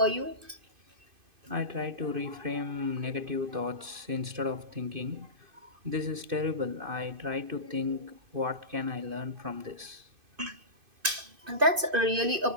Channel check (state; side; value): late; left; 2.5 ms